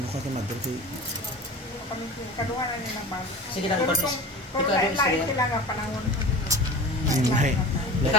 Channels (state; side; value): normal; both; correlation 0.35